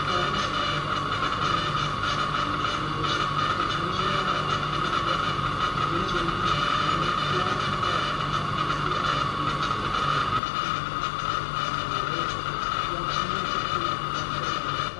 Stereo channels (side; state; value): right; drops out; at 10.4 s